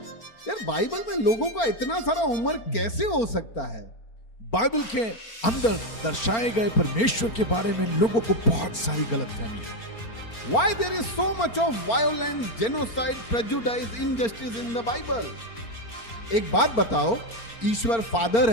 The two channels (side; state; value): right; late; 4.4 ms